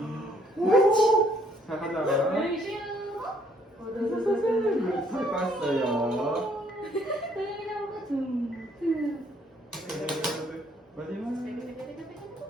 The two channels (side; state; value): both; normal; correlation 0.65